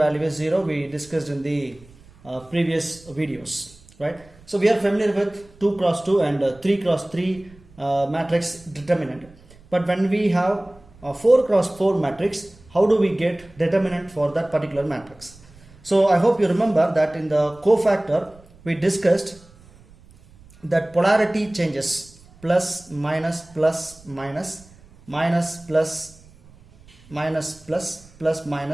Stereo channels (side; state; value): right; noise; rumble, 25 dB below the sound